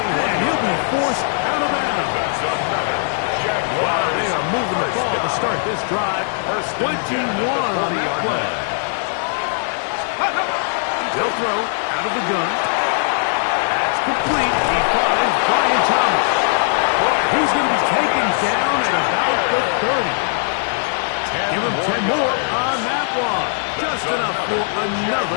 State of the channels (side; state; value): right; silent; digital silence